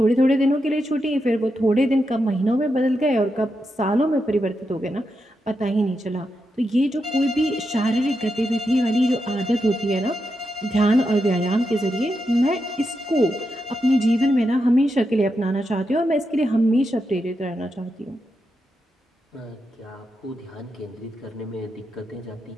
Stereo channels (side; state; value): both; normal; correlation 0.86